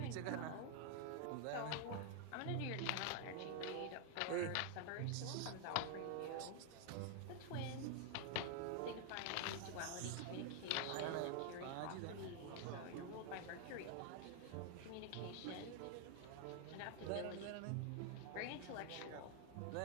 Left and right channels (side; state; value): both; different; correlation 0.00